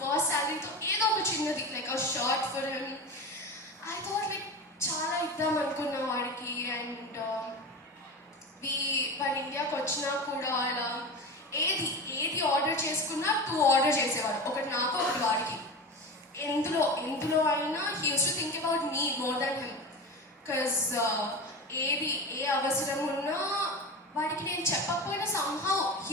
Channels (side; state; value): both; normal; correlation 0.27